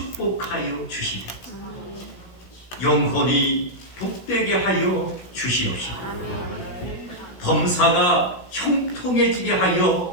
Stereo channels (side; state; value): right; late; 16 ms